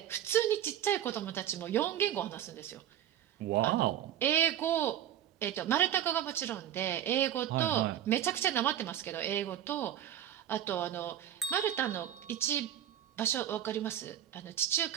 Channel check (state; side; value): quieter; left; 11.0 dB